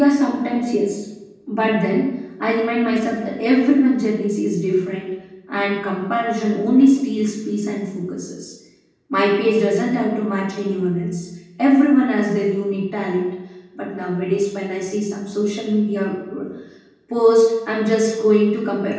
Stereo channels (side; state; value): both; identical; correlation 1.00